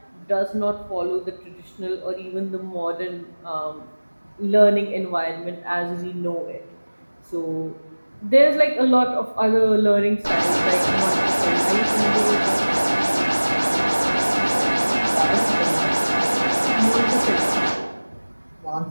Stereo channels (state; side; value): inverted; both; correlation -1.00